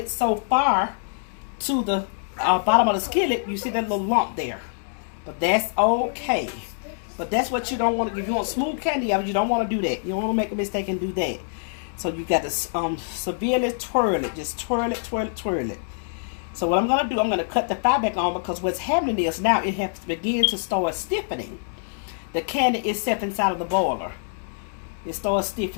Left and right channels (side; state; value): right; silent; digital silence